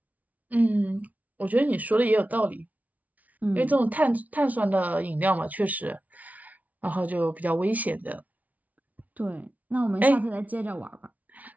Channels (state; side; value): late; left; 0.072 ms